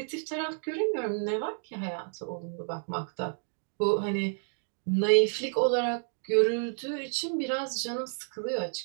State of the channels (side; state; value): left; silent; 58 dB below the other